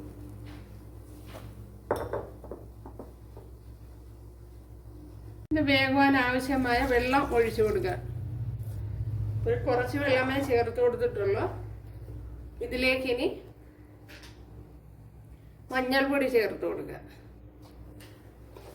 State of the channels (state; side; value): identical; both; correlation 1.00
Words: ഇത് വേകുവാൻ ആവശ്യമായ വെള്ളം ഒഴിച്ചു കൊടുക്കുക. ഒരു കുറച്ച് വെള്ളമേ ചേർത്ത് കൊടുത്തിട്ടുള്ളൂ. ഇതിലേക്ക് ഇനി മഞ്ഞൾപ്പൊടി ചേർത്ത് കൊടുക്കുക.